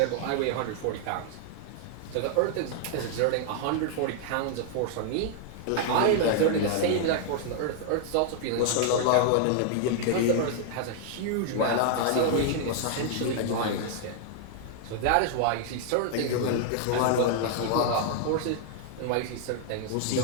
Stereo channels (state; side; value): different; both; correlation 0.00